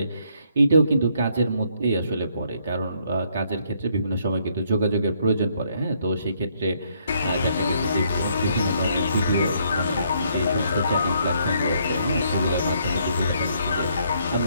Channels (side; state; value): both; inverted; correlation -0.70